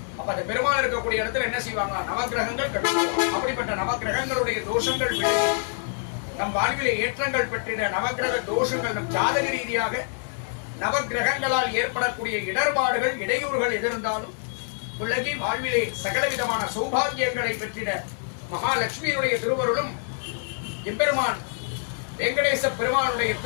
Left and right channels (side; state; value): right; silent; digital silence